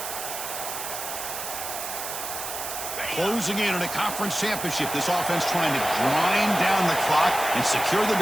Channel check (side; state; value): right; noise; hiss, 6 dB below the sound